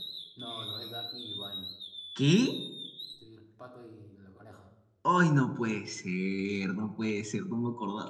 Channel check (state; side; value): identical; both; correlation 1.00